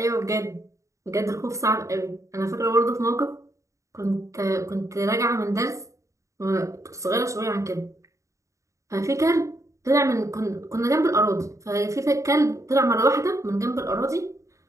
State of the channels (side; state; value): left; late; 0.15 ms